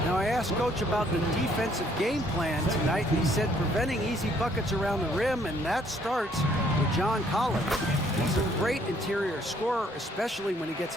Now, I asked Coach about the defensive game plan tonight, and he said preventing easy buckets around the rim, and that starts with John Collins. He's a great interior scorer, especially when he gets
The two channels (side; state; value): both; normal; correlation 0.65